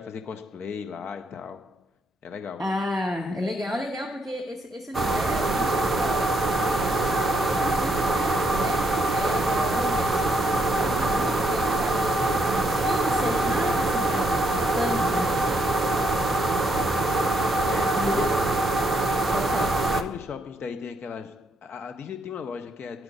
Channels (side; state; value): both; normal; correlation 0.74